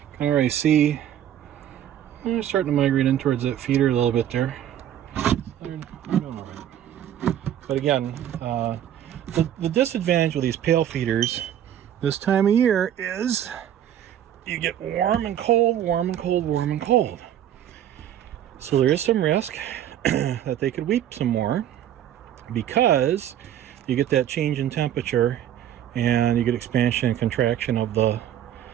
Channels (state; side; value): quieter; left; 10.7 dB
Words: Can already see they're starting to migrate in towards that feeder a little bit there. They're doing all right. But again, the disadvantage with these pail feeders this time of year is you get warm and cold, warm and cold, warm and cold. So there is some risk that they could weep some more because you get that change in temperature and you get expansion and contraction of the